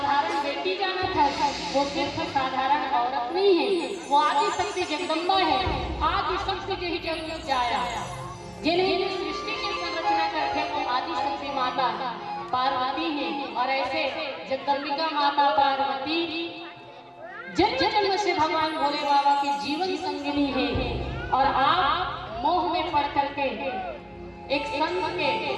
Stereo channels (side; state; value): both; identical; correlation 1.00